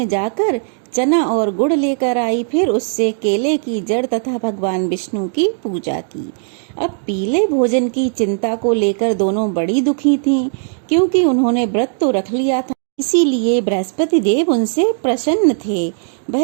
जाकर चना और गुड़ लेकर आई, फिर उससे केले की जड़ तथा भगवान विष्णु की पूजा की। अब पीले भोजन की चिंता को लेकर दोनों बड़ी दुखी थीं, क्योंकि उन्होंने व्रत तो रख लिया था, इसीलिए बृहस्पति देव उनसे प्रसन्न थे। वह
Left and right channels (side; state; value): left; silent; digital silence